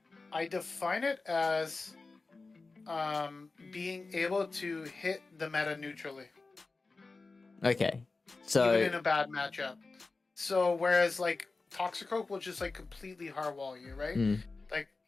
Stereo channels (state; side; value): quieter; right; 3.8 dB